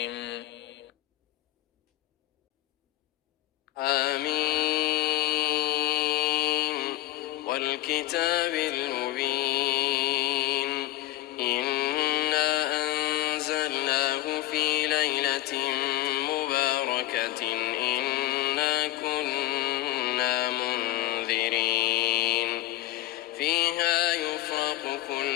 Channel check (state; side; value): quieter; right; 15.4 dB